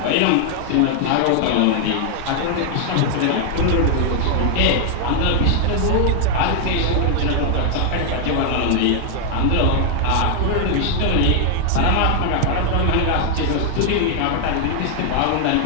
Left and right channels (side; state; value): both; different; correlation 0.00